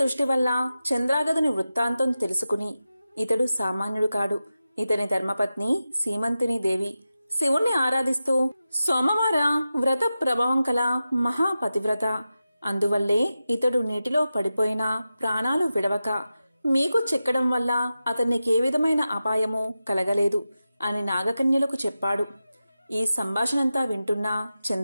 వల్ల చంద్రాగదుని వృత్తాంతం తెలుసుకుని, ఇతడు సామాన్యుడు కాడు, ఇతని ధర్మపత్ని సీమంతిని దేవి శివుణ్ణి ఆరాధిస్తూ సోమవార వ్రత ప్రభావం కల మహాపతివ్రత, అందువల్లే ఇతడు నీటిలో పడిపోయినా ప్రాణాలు విడవక మీకు చిక్కడం వల్ల అతన్నికే విధమైన అపాయము కలగలేదు అని నాగకన్యలకు చెప్పాడు. ఈ సంభాషణంతా వింటున్న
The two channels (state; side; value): inverted; both; correlation -0.92